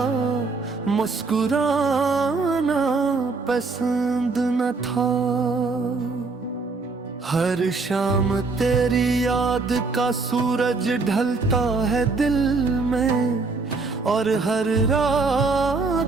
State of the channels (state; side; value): quieter; left; 4.1 dB